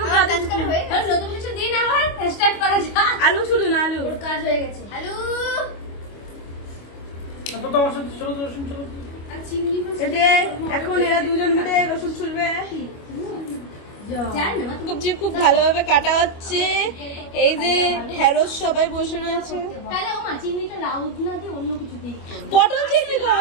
কাজ কাজ করে হয়ে গেল নতুন কিছু দিন আবার স্টার্ট করা যাক আলু ছুলুন আলু ওর কাজ হয়ে গেছে হ্যালো তো তোমার সাথে চলো রসুন চলো এই যে এখন এরা দুজন মিলে রসুন ছুলবে জান না সবজি খুব ভালোভাবে কাটা হচ্ছে এই যে ঢেঁড়স সবাই বসে রয়েছে তাহলে ও মা চিংড়িটা লাউ না দিয়ে অন্য কিছু দিই পটল চিংড়ি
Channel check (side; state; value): right; late; 25 ms